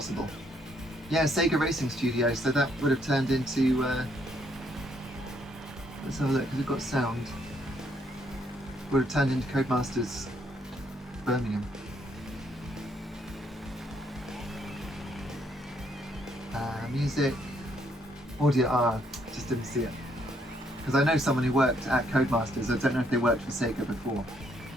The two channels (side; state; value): both; normal; correlation 0.71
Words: Yeah, Sega Racing Studios, so that would have turned into... let's have a look, because we've got sound. Would have turned into Codemasters Birmingham. Music, audio, just didn't see it. Because I know someone who worked at Codemasters. I don't know if they worked for Sega before.